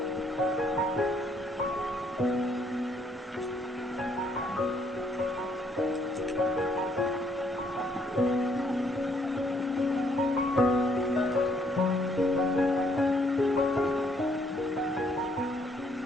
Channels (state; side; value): normal; both; correlation 0.68